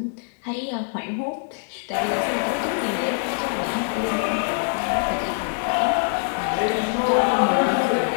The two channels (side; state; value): right; silent; 63 dB below the other